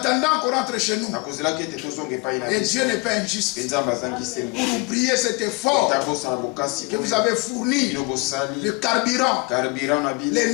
qu'on rentre chez nous. Et Dieu n'est pas injuste pour oublier cet effort que vous avez fourni, le carburant,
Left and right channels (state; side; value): quieter; right; 28.3 dB